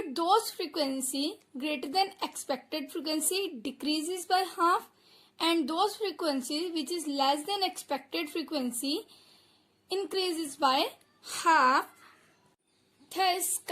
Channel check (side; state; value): both; identical; correlation 1.00